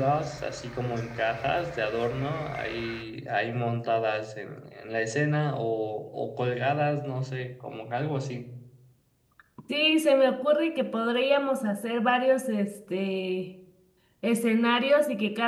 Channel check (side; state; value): both; identical; correlation 1.00